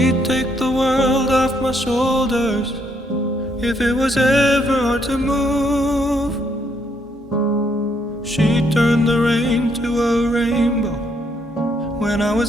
take the world off my shoulders if it was ever hard to move. She'd turn the rain to a rainbow when I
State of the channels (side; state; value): both; normal; correlation 0.72